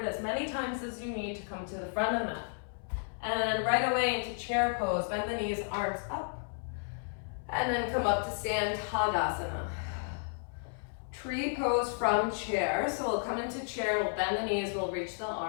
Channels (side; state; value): right; silent; 56 dB below the other